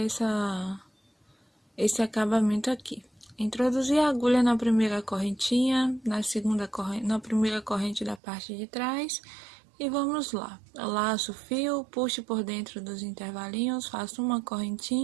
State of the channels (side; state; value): left; drops out; at 8.2 s